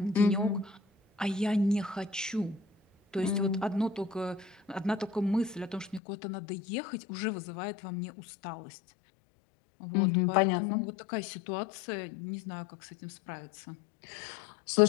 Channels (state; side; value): drops out; right; at 6.0 s